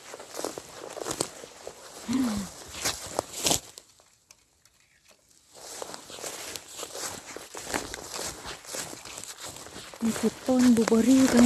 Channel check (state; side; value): identical; both; correlation 1.00